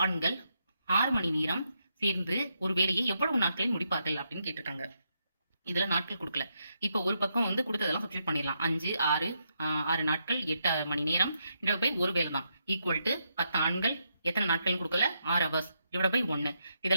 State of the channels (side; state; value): both; inverted; correlation -0.80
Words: ஆண்கள் 6 மணி நேரம் சேர்ந்து ஒரு வேலையை எவ்வளவு நாட்களில் முடிப்பார்கள் அப்படின்னு கேட்டிருக்காங்க. இதுல நாட்கள் கொடுக்கல. இப்ப ஒரு பக்கம் வந்து கொடுத்ததெல்லாம் சப்ஸ்டியூட் பண்ணிடலாம். 5 6 நாட்கள் 8 மணி நேரம் டிவைட் பை ஒரு வேலை தான் ஈக்குவல் டு 10 ஆண்கள் எத்தனை நாட்கள் கொடுக்கல 6 ஹவர்ஸ் டிவைட் பை 1.